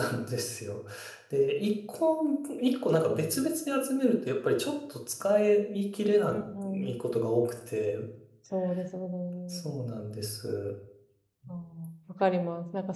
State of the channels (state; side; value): identical; both; correlation 1.00